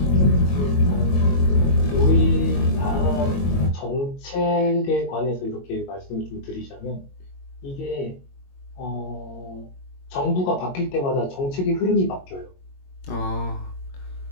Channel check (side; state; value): right; late; 22 ms